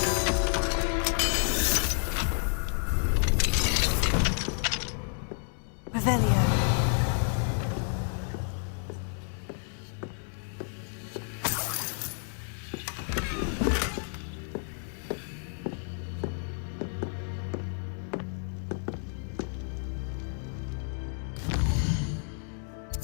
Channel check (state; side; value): silent; right; 58 dB below the other